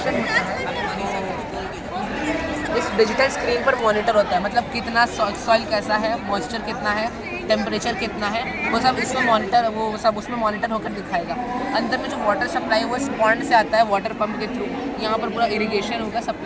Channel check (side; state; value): both; identical; correlation 1.00